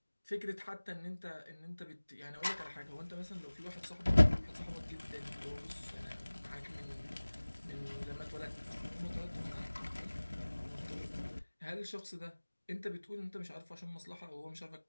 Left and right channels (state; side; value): inverted; both; correlation -1.00